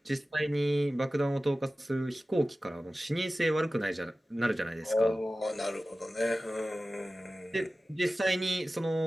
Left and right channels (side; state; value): both; normal; correlation 0.96